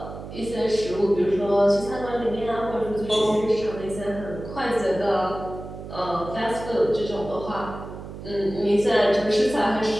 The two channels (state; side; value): noise; right; hum, 11 dB below the sound